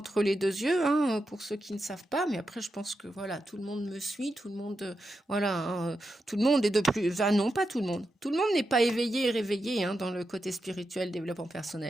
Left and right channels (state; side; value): normal; both; correlation 0.88